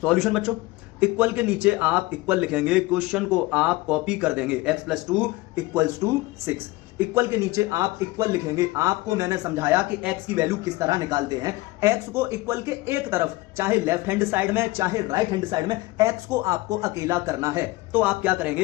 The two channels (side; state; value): right; quieter; 20.3 dB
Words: बच्चों, इक्वल के नीचे आप इक्वल लिखेंगे, क्वेश्चन को आप कॉपी कर देंगे, x plus 2 equals to 6। Equal के नीचे आप इक्वल लिखेंगे। आपको मैंने समझाया कि x की वैल्यू किस तरह निकालते हैं। x को इक्वल के एक तरफ, चाहे लेफ्ट हैंड साइड में चाहे राइट हैंड साइड में, x को आपको अकेला करना है। तो आप क्या